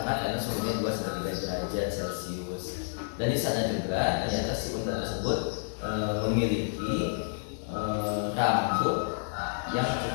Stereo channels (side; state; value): right; silent; digital silence